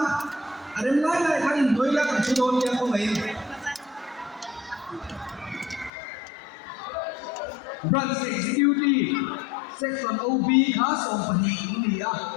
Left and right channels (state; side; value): drops out; right; at 5.9 s